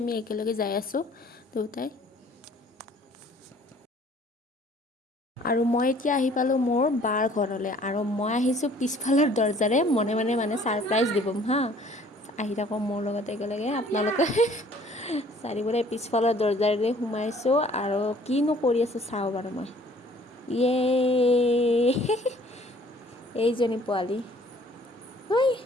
একেলগে যাই আছোঁ দুটাই। আৰু মই এতিয়া আহি পালোঁ মোৰ বাৰ ঘৰলৈ, আৰু মই আহিছোঁ পিছফালৰ দৰজাৰে মনে মনে মানে ছাৰপ্ৰাইজ দিবম হা। আহি থাকক মোৰ লগত একেলগে আপোনালোকে। চাৰিবোৰে পিছফালৰ দৰজাৰে সোমাইছোঁ আৰু কিনো কৰি আছোঁ চাওঁ বাৰু মই। ইয়ে এইজনী পোৱালি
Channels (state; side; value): normal; both; correlation 0.56